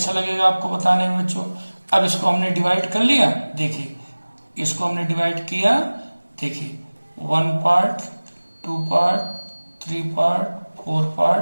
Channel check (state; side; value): inverted; both; correlation -1.00